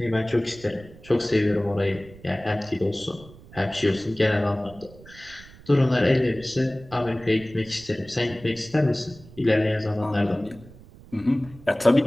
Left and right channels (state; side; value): noise; right; rumble, 21 dB below the sound